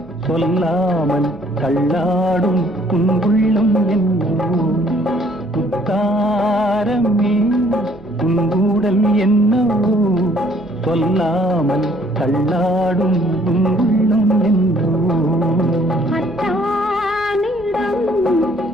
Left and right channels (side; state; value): both; normal; correlation 0.61